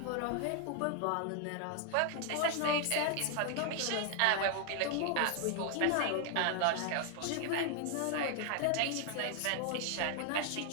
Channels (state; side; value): different; both; correlation 0.00